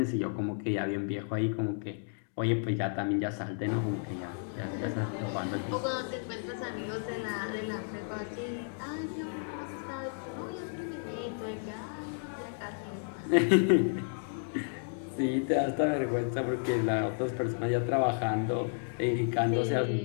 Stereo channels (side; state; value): right; silent; digital silence